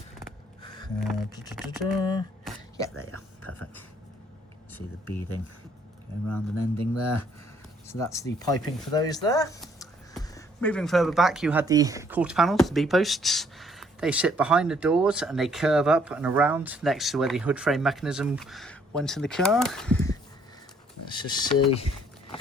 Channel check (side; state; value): both; normal; correlation 0.64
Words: Yeah, there you are. Perfect. See the beading going around and ending there. So that's the piping for those there. Moving further back, you had the quarter panels, the B-posts. They sit behind the doors and they curve up and around next to where the hood frame mechanism went in the car. Let's just see.